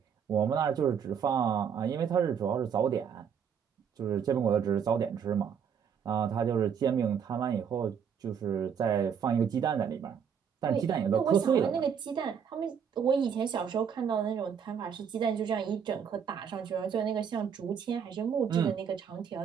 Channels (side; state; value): left; quieter; 7.5 dB